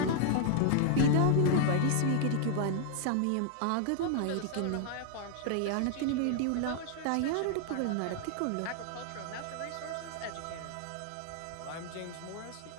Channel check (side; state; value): both; different; correlation 0.00